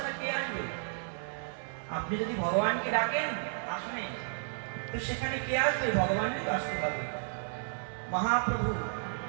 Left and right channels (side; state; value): left; silent; digital silence